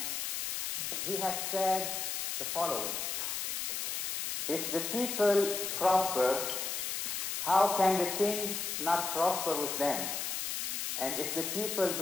he has said the following: if the people prosper, how can the king not prosper with them? And if the people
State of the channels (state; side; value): noise; left; hiss, 2 dB below the sound